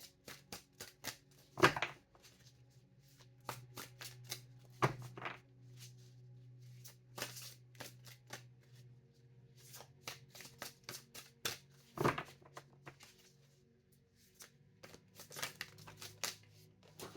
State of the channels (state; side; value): identical; both; correlation 1.00